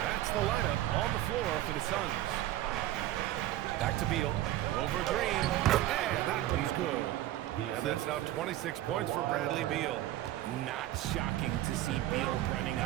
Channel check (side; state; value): left; quieter; 14.3 dB